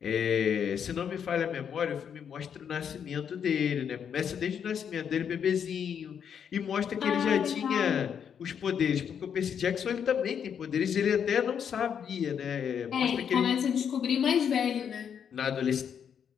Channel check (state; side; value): quieter; right; 7.9 dB